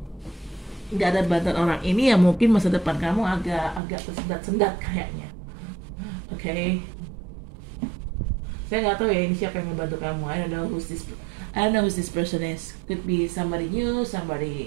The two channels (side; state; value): left; drops out; at 3.8 s